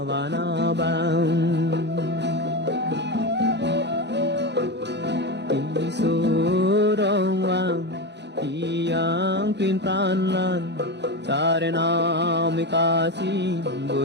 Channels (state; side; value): late; left; 0.50 ms